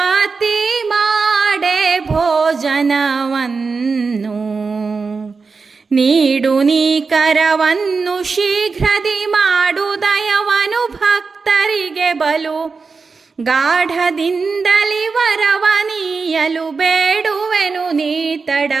ಮಾಡೆ ಭೋಜನವನ್ನು ನೀಡು ನೀ ಕರವನ್ನು ಶೀಘ್ರದಿ ಮಾಡು ದಯವನು ಭಕ್ತರಿಗೆ ಬಲು ಗಾಢದಿಂದಲಿ ವರವನೀಯಲು ಬೇಡುವೆನು ನೀ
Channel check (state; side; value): quieter; left; 4.7 dB